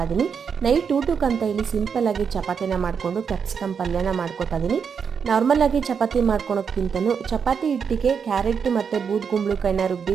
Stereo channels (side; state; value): left; quieter; 6.6 dB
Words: ಇದ್ದೀನಿ. ನೈಟ್ ಊಟಕ್ಕಂತ ಇಲ್ಲಿ ಸಿಂಪಲ್ಲಾಗಿ ಚಪಾತಿನ ಮಾಡಿಕೊಂಡು ಕ್ಯಾಪ್ಸಿಕಮ್ ಪಲ್ಯನ ಮಾಡ್ಕೋತಾ ಇದ್ದೀನಿ. ನಾರ್ಮಲಾಗಿ ಚಪಾತಿ ಮಾಡ್ಕೊಳೋಕ್ಕಿಂತನೂ ಚಪಾತಿ ಹಿಟ್ಟಿಗೆ ಕ್ಯಾರೆಟ್ ಮತ್ತು ಬೂದ್ಗುಂಬಳಕಾಯಿನ